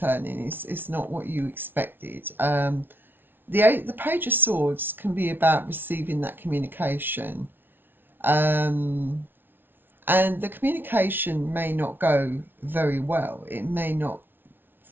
It's not what you expected. The Page of Swords can be about receiving that communication, and the communication may not go very well. It may not,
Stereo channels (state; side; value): late; left; 0.10 ms